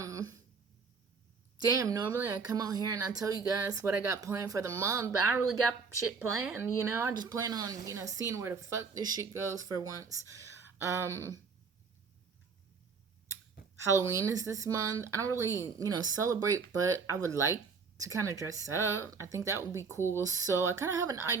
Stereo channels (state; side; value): quieter; left; 5.2 dB